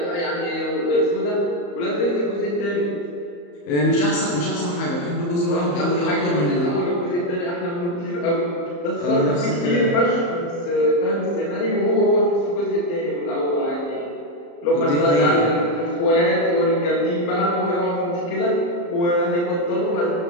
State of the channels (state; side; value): late; right; 34 ms